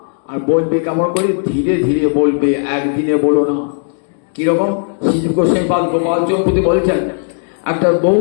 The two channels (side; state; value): right; silent; digital silence